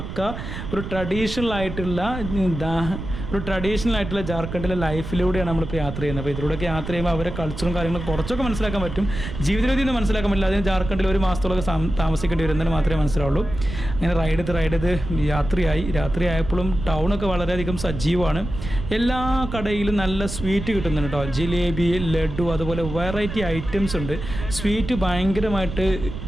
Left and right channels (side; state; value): right; noise; rumble, 8 dB below the sound